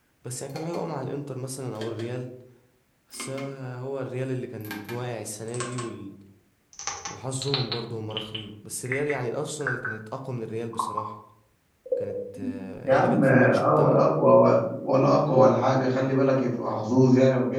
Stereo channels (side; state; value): both; identical; correlation 1.00